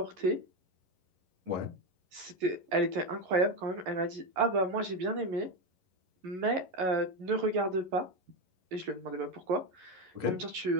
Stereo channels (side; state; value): left; late; 11 ms